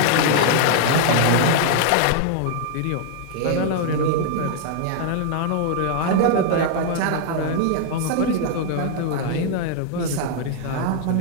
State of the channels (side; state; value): both; different; correlation 0.00